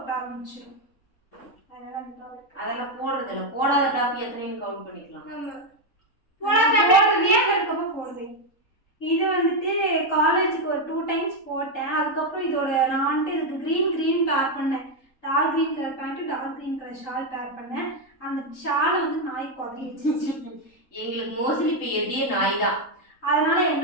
ஆரம்பிச்சிடும். அதெல்லாம் போடுறது இல்ல. போடாத டாப் எத்தனைன்னு கவுண்ட் பண்ணிக்கலாம். போடுவேன். இது வந்துட்டு காலேஜுக்கு ஒரு 2 டைம்ஸ் போட்டேன். அதுக்கப்புறம் இதோட நான் வந்துட்டு இதுக்கு க்ரீன் பேர் பண்ணேன். Dark green colour pant dark green colour shawl pair பண்ணேன். அந்த ஷாலை வந்து நாய் குதறி வச்சிருச்சு. எங்களுக்கு மோஸ்ட்லி இப்போ எதியே நாய் தான். அதனால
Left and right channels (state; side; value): late; right; 3.9 ms